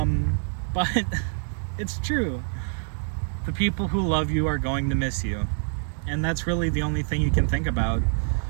it's true. The people who love you are going to miss you. And that's really the only thing you can think about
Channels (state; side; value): silent; left; 61 dB below the other